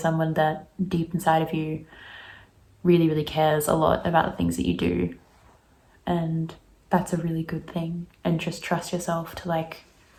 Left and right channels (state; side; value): identical; both; correlation 1.00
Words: that deep inside of you really, really cares a lot about the things that you do. And that's a really good thing. And just trust yourself to like